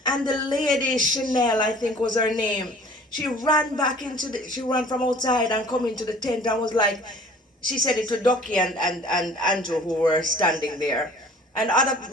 And the lady, Chanel, I think was her name, she ran back she ran from outside and come into the tent and was like, she said it to Ducky and Andrew who were standing there. And other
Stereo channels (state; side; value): normal; both; correlation 0.49